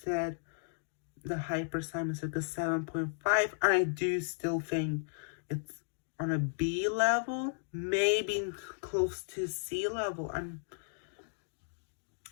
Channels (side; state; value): right; silent; digital silence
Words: the Hyper slime is like a 7.5, and I do still think it's on a B level, maybe close to C level. And